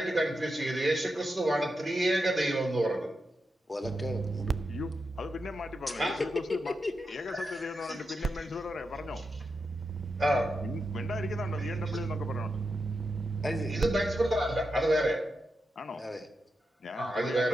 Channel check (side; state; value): both; normal; correlation 0.87